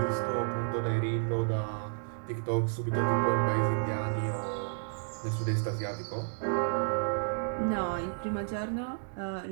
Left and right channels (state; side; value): silent; left; digital silence